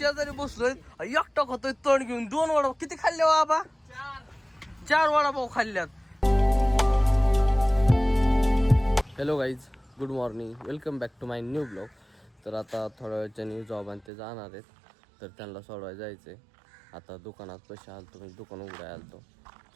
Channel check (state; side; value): drops out; left; at 14.1 s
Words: बसलोय, एकटा खातोय तण घेऊन. 2 वडापाव किती खाल्ले बाबा? 4 वडापाव खाल्ल्यात. Hello guys, good morning, welcome back to my new blog. तर आता थोड्या वेळच्या न्यू जॉब आणि ते जाणार आहेत, तर त्यांना सोडवायला जायचं आहे. आता दुकानात पैसे आलतो, म्हणजे दुकान उघडाय आलतो.